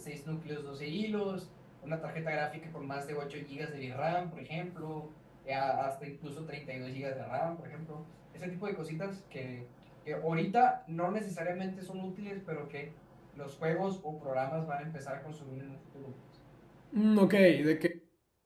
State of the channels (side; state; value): both; identical; correlation 1.00